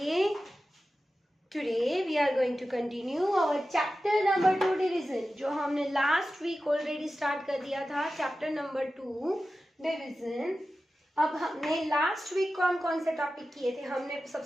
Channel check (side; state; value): both; normal; correlation 0.94